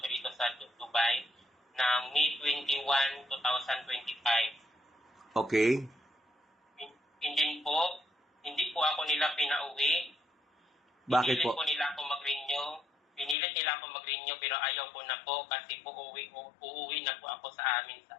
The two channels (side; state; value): right; drops out; at 13.4 s